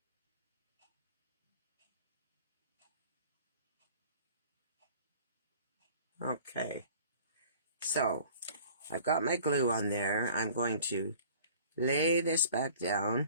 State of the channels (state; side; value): inverted; both; correlation -0.48